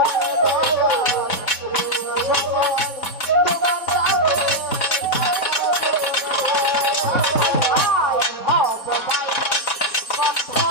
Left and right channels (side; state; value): right; late; 4.1 ms